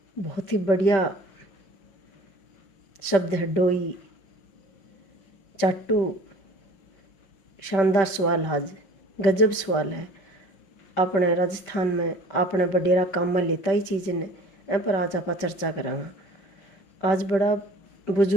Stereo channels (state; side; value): late; right; 5.2 ms